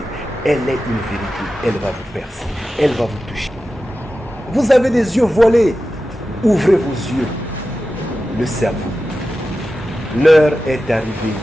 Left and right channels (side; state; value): both; normal; correlation 0.93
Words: elle est une vérité. Elle va vous percer. Elle va vous toucher. Vous avez des yeux voilés. Ouvrez vos yeux. Le cerveau. L'heure est arrivée